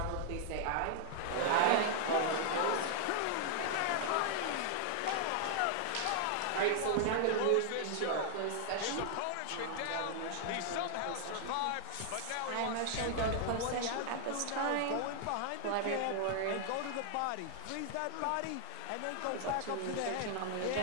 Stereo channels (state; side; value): different; both; correlation -0.01